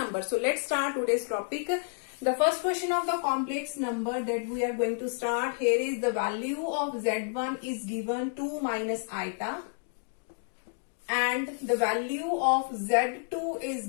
So let's start today's topic. The first question of the complex number that we are going to start here is the value of z1 is given 2 minus iota, and the value of z2 is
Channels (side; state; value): right; silent; 58 dB below the other